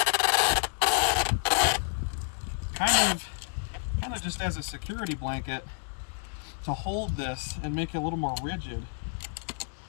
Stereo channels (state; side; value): silent; right; digital silence